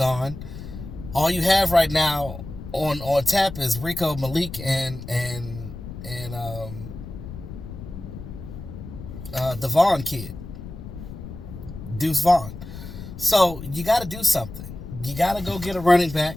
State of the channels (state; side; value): noise; left; rumble, 11 dB below the sound